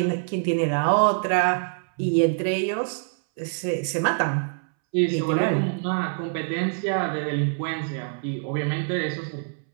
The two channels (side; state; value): left; silent; 62 dB below the other